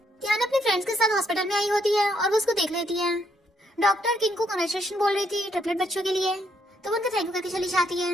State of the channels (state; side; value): normal; both; correlation 0.73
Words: टियाना अपने फ्रेंड्स के साथ हॉस्पिटल में आई होती है और वो उसको देख लेती है। डॉक्टर किंग को कांग्रेचुलेशन बोल रही थी ट्रिपलेट बच्चों के लिए, तो वो उनका थैंक यू करके चली जाती है।